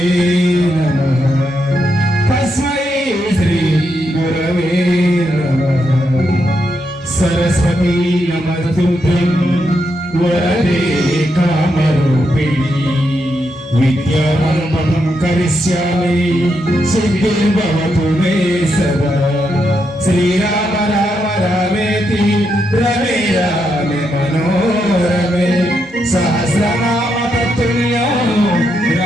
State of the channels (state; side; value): normal; both; correlation 0.82